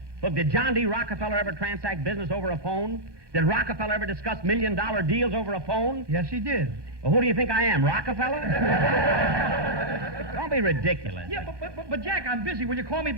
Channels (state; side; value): late; left; 1.2 ms